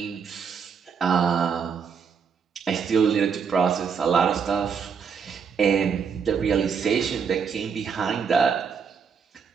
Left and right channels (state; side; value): quieter; left; 6.4 dB